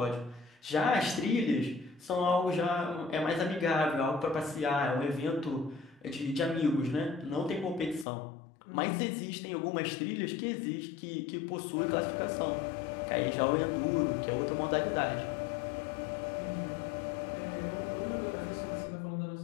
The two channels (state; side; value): drops out; right; at 8.1 s